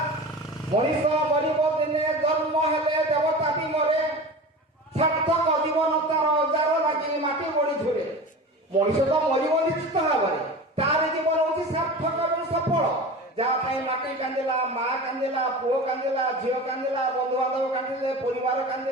मनीष मरब दिने जन्म हेले देवता भी मरे सार्थक जीवन तार जार लगे माटी बड़ी धुरे मनीष तो मरब निश्चित भाव में तार जीवन हूँ सार्थक और सफल जहाँ माटी कांदिला माँ कांदिला पुओ कांदिला झील कांदिला बंधुबांधव कांदिले परिवार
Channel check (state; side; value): normal; both; correlation 0.33